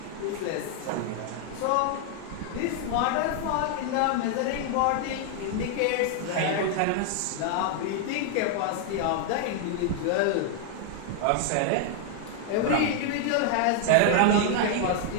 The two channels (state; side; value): different; both; correlation 0.00